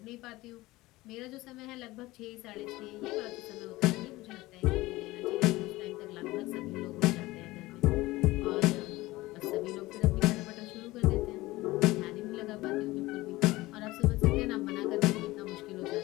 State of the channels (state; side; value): quieter; right; 19.2 dB